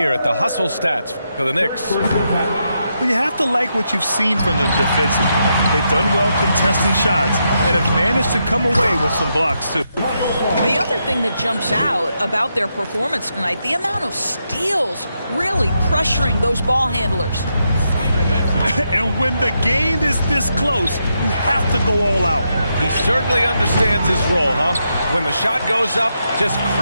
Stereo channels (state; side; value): inverted; both; correlation -0.82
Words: at the hustle stats for the Knicks. Well, you have to like what you've seen from them defensively. They've done well contesting shots and have managed to come away with some blocks, too. The other thing that jumps out about their performance tonight, the amount of steals really pressuring those ball handlers. And when the game is this close, you have to go all out. He certainly understands his role, huh? When the shot goes up, just